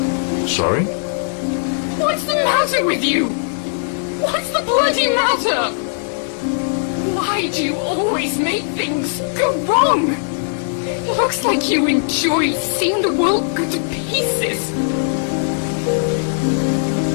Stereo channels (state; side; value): silent; right; digital silence